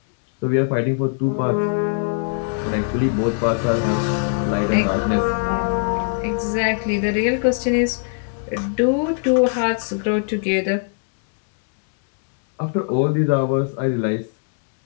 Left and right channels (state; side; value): silent; right; digital silence